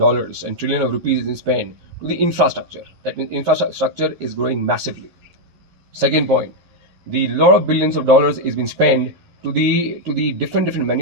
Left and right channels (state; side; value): late; left; 11 ms